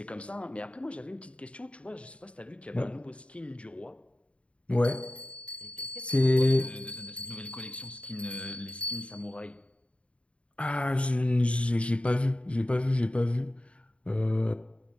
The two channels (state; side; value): late; right; 0.061 ms